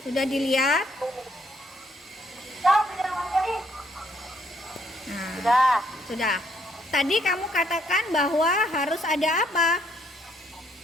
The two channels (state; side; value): normal; both; correlation 0.70